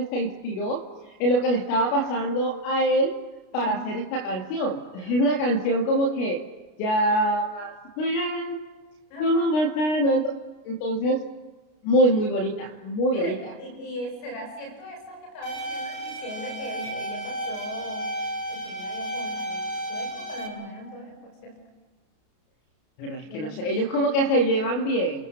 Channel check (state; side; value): late; right; 33 ms